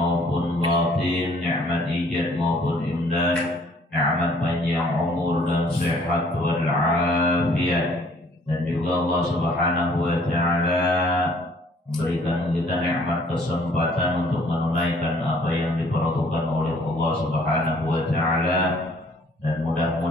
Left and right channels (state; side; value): normal; both; correlation 0.59